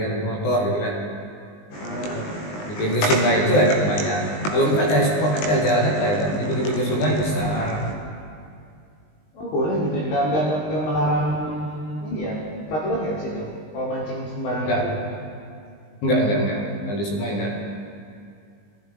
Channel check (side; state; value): right; late; 20 ms